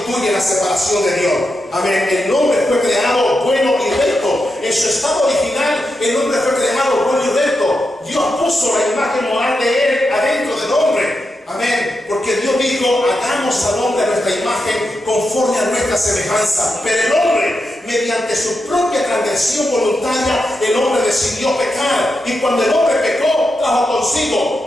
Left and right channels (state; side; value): normal; both; correlation 0.87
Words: la separación de Dios. Amén. El hombre fue creado bueno y recto. En su estado original, el hombre fue creado bueno y recto. Dios puso la imagen moral de él adentro del hombre. Amén. Porque Dios dijo, hagamos al hombre a nuestra imagen conforme a nuestra semejanza. Pero el hombre, mediante su propia transgresión voluntaria, el hombre decidió pecar. Y cuando el hombre pecó, trajo